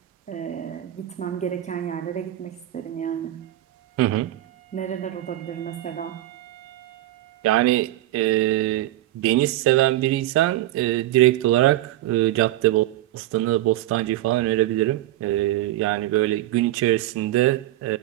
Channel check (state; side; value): quieter; left; 14.9 dB